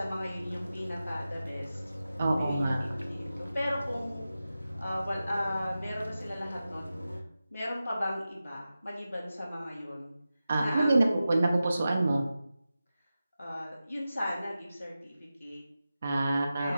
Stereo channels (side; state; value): both; inverted; correlation -0.93